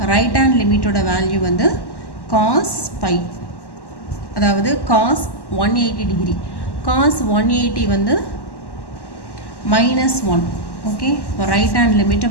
ரைட் ஹேண்ட் லிமிட்டோட வேல்யூ வந்து cos π, அதாவது cos 180 டிகிரி. cos 180 வந்து -1. ஓகே, இப்போ right hand limit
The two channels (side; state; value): right; late; 1.1 ms